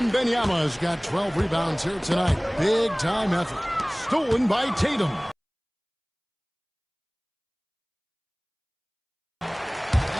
has got 12 rebounds here tonight. Big time effort. Stolen by Tatum.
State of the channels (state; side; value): identical; both; correlation 1.00